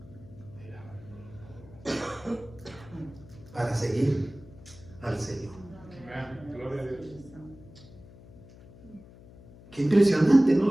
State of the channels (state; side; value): noise; left; hum, 20 dB below the sound